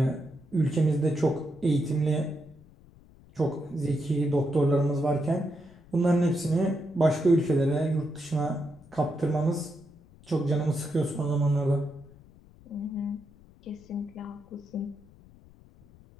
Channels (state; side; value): noise; left; rumble, 25 dB below the sound